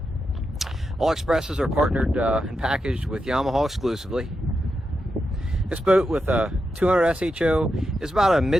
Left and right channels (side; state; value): both; normal; correlation 0.87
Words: All Xpresses are partnered and packaged with Yamaha exclusively. This boat with a 200 SHO is about a